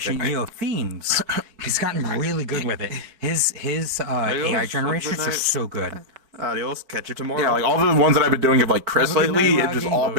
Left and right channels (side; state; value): left; late; 4.6 ms